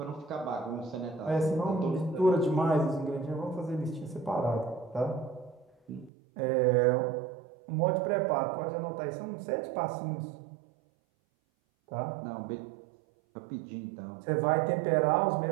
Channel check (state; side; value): drops out; left; at 6.1 s